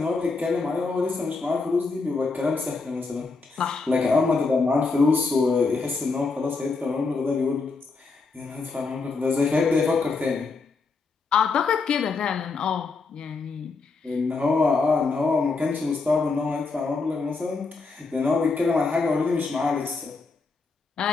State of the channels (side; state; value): right; quieter; 4.1 dB